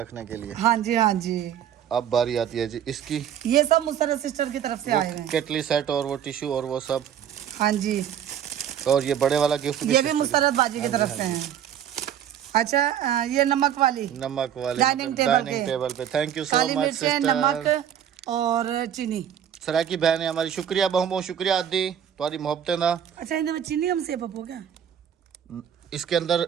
रखने के लिए। हाँ जी, हाँ जी, अब बारी आती है जी इसकी। ये सब मुसर्रत सिस्टर की तरफ से वो आए हैं। केटली सेट और वो टिश्यू और वो सब, हाँ जी, और ये बड़े वाला गिफ्ट भी ये भी sister मुसर्रत बाजी की तरफ से हैं। अच्छा, ये नमक वाली, की। नमक वाले डाइनिंग टेबल डाइनिंग पे। टेबल पे। Thank you so Kali much मिर्चें, सिस्टर। नमक और चीनी। सराकी बहन है हमारी, शुक्रिया बहु बहुत शुक्रिया आदि तुम्हारी मोहब्बतें ना। अच्छा, इनमें चीनी हम से पप्पो क्या? इसके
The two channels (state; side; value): quieter; left; 9.6 dB